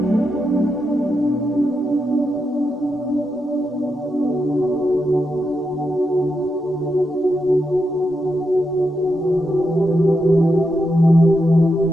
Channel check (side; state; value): both; normal; correlation 0.84